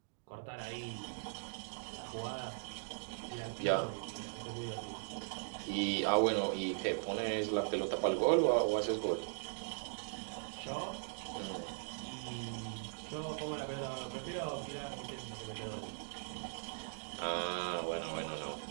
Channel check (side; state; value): left; silent; digital silence